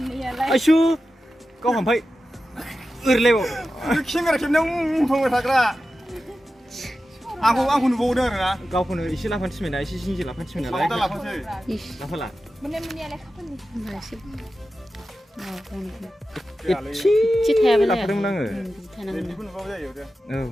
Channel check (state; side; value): normal; both; correlation 0.93